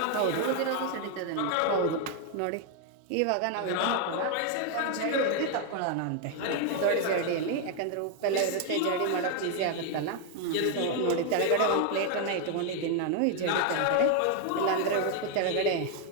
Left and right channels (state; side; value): different; both; correlation 0.00